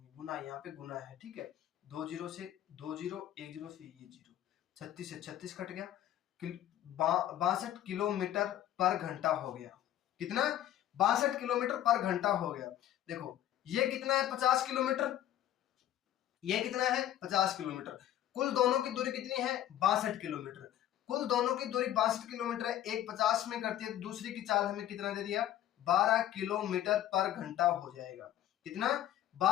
गुना यहाँ पे गुना है। ठीक है, 2 जीरो से 2 जीरो, 1 जीरो से ये जीरो, 36 से 36 कट गया, 62 किलोमीटर पर घंटा हो गया। कितना, 62 किलोमीटर पर घंटा हो गया। देखो ये कितना है, 50 किलोमीटर, ये कितना है, 50 किलोमीटर। कुल दोनों की दूरी कितनी है, 62 किलोमीटर। कुल दोनों की दूरी 62 किलोमीटर है, एक 50 में करती है, तो दूसरी की चाल हमें कितना दे दिया, 12 किलोमीटर पर घंटा हो जाएगा। कितना,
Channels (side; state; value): right; quieter; 12.3 dB